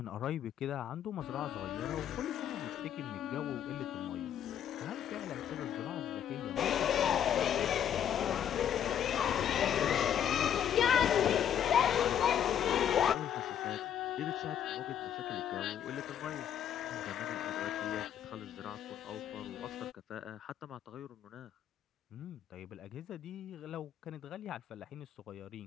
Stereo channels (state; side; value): quieter; right; 9.5 dB